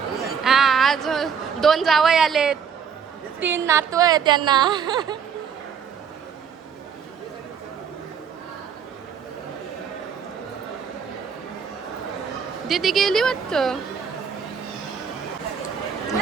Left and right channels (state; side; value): quieter; left; 7.0 dB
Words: हां. आज 2 जावई आलेत, 3 नातू आहे त्यांना. दीदी गेली वाटतं.